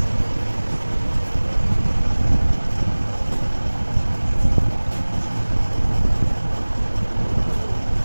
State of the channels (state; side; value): inverted; both; correlation -1.00